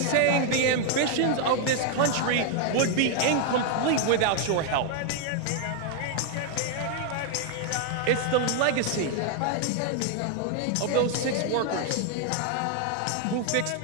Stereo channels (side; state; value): both; different; correlation 0.00